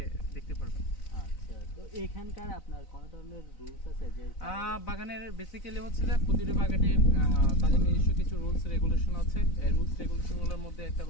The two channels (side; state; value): right; late; 4.0 ms